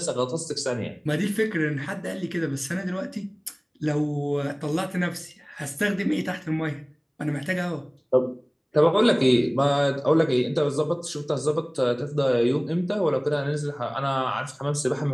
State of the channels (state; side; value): identical; both; correlation 1.00